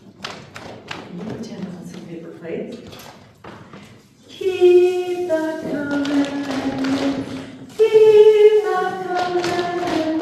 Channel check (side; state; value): both; identical; correlation 1.00